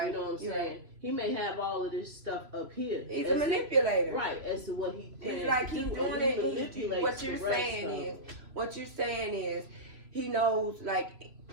You know what I'm saying? Right. He may have all of this stuff up here. He's a manipulator. Right, as to what he plans. It's like he's doing it. What you're saying is he knows like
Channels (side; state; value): left; late; 3.0 ms